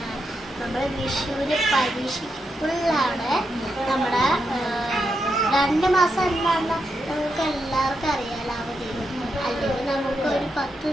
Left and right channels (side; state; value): both; normal; correlation 0.84